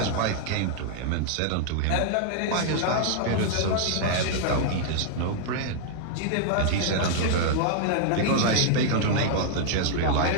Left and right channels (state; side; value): different; both; correlation -0.01